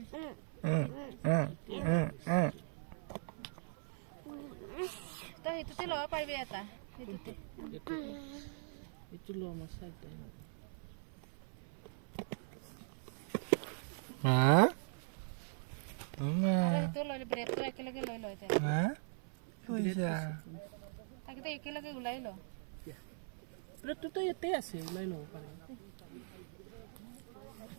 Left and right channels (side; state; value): left; silent; 51 dB below the other